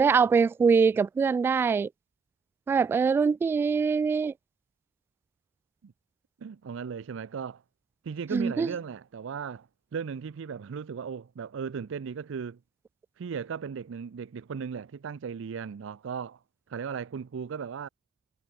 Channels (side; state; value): left; quieter; 5.3 dB